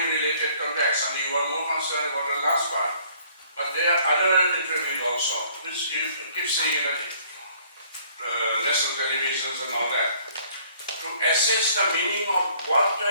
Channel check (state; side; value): inverted; both; correlation -0.59